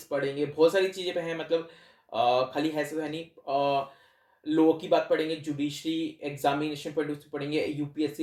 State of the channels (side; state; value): both; identical; correlation 1.00